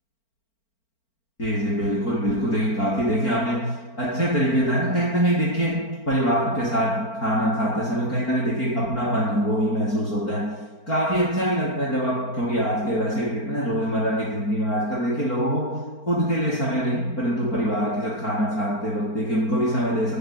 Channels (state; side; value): late; right; 4.4 ms